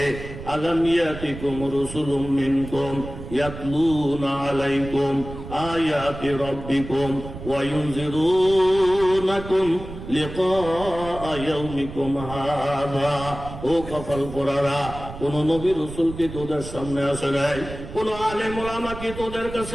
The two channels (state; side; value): noise; right; rumble, 11 dB below the sound